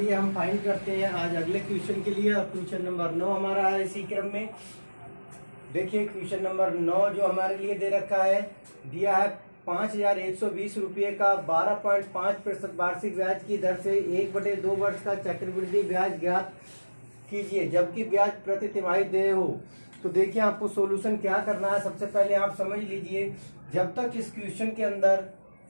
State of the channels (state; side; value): inverted; both; correlation -1.00